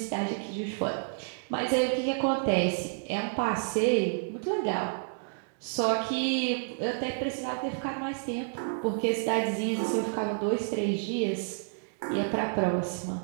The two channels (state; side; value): silent; left; digital silence